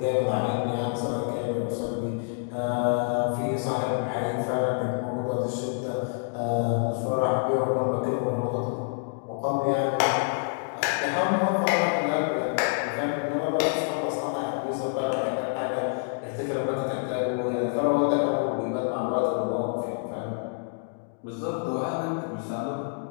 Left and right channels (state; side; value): silent; right; digital silence